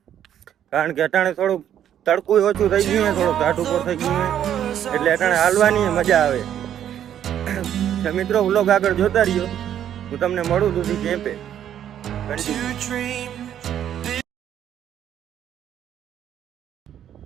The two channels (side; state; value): left; quieter; 10.3 dB